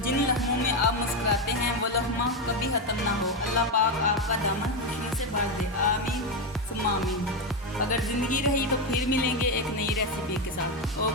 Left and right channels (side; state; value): both; normal; correlation 0.09